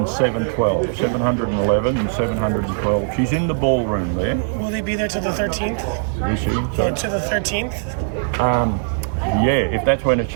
712. 711 and 712. She's in the ballroom there. Will they be there till the 13th? You see? Or to the 13th? Yeah, if that's when it's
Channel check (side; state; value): left; silent; 64 dB below the other